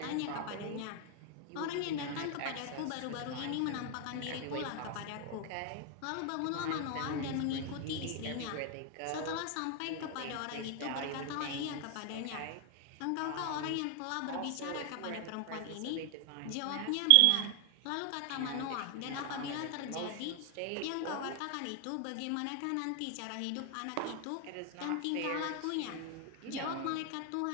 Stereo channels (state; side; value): different; both; correlation 0.00